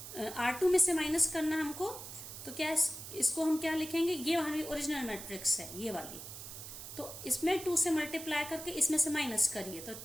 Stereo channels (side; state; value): right; noise; hiss, 11 dB below the sound